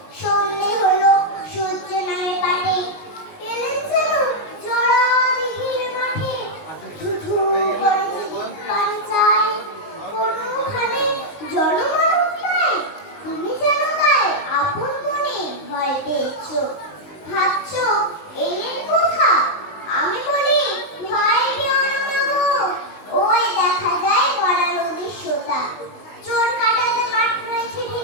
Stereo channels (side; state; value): right; late; 19 ms